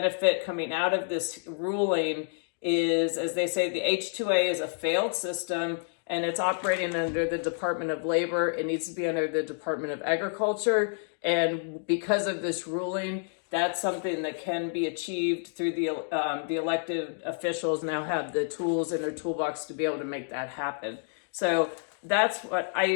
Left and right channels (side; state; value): right; silent; 59 dB below the other